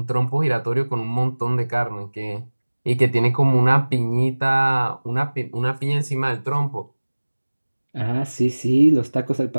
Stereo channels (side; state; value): both; inverted; correlation -1.00